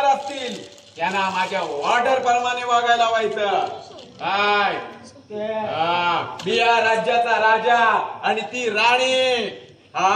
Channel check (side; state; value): both; identical; correlation 1.00